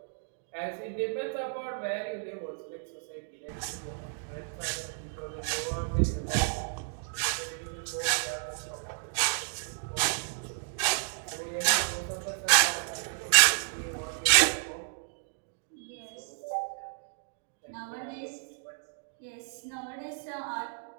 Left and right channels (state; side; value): silent; left; digital silence